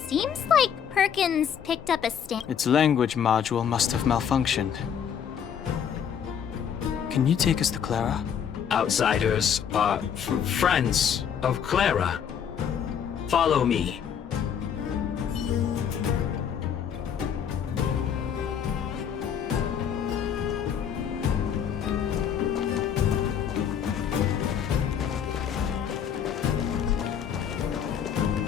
Seems like Perkins picked up a stand. Its language module must have malfunctioned. Can you take us to Clara? Outsiders are friends of Clara. Follow me.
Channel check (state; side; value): quieter; right; 8.2 dB